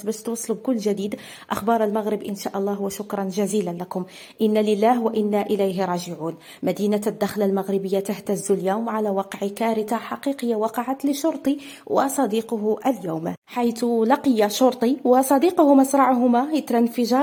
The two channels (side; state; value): both; identical; correlation 1.00